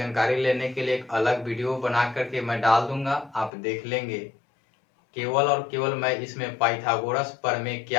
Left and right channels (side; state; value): right; drops out; at 3.5 s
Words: लेने के लिए एक अलग वीडियो बना करके मैं डाल दूंगा, आप देख लेंगे। केवल और केवल मैं इसमें पाइथागोरस प्रमेय